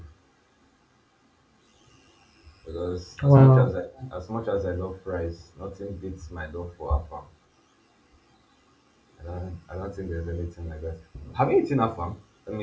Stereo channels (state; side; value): identical; both; correlation 1.00